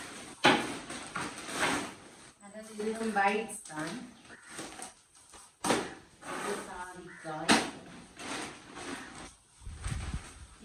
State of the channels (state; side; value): identical; both; correlation 1.00